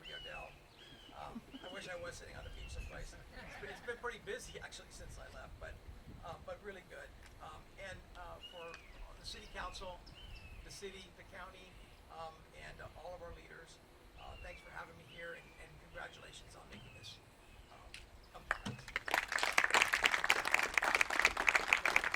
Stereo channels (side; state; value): both; identical; correlation 1.00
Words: Rio Dell. I wish I was sitting on a beach someplace. It's been pretty busy actually since I left, but really good. And for the City Council the city, the county, and all of our leaders. Thanks for having me here, and congratulations on making this.